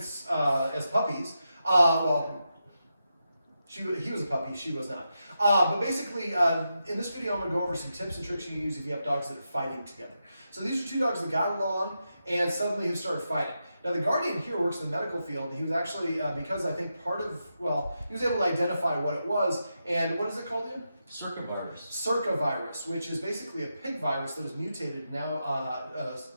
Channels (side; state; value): both; inverted; correlation -0.87